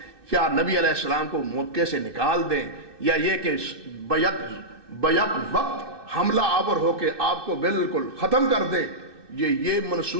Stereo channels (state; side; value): late; left; 2.6 ms